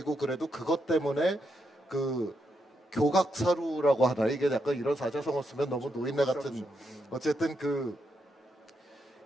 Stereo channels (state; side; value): normal; both; correlation 0.81